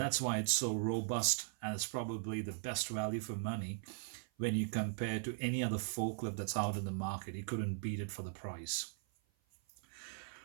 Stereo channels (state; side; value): silent; left; 52 dB below the other